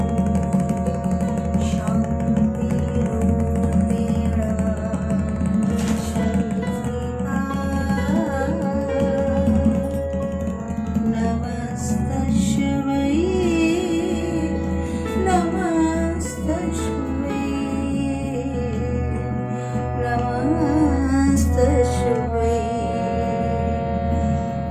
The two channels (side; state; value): both; identical; correlation 1.00